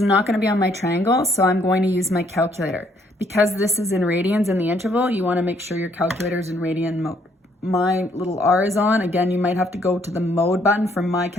not going to be on my triangle, so I'm going to use my calculator. Because this is in radians in the interval, you want to make sure your calculator is in radian mode. My little R is on. Again, you might have to go to the mode button. From my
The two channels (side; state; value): both; normal; correlation 0.67